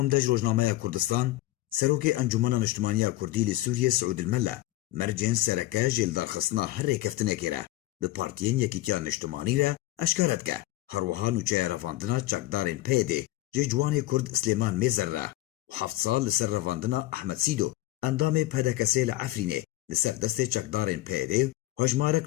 دەژ ڕۆژنامەیە کوردستان سەرۆکێ ئەنجومەنە نیشتیمانیە کوردی لە سووریە سعود المەلە مەرجێن سەرەکە ژێلدارخستنا هەر ڕێکەفتنێکێرە bi partiyên Yekîtiya Niştimanî re eşkere dike herwiha nûçeya revandina çekdarên PYD jê ciwanê Kurd Slêman Mêzer re û heft sal li ser revandina Ehmed Sîdo endamê PDKSê li Efrînê li ser destê çekdarên PYD hejmarek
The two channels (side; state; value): right; quieter; 16.9 dB